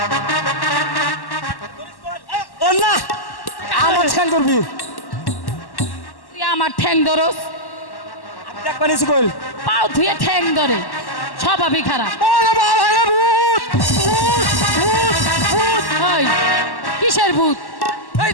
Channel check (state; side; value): late; right; 1.1 ms